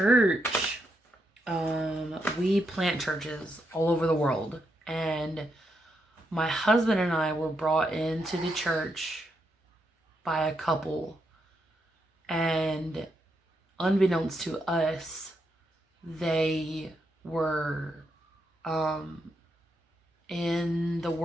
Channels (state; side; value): normal; both; correlation 0.81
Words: we plant churches all over the world. And my husband and I were brought into the church by a couple. And unbeknownst to us, they were in the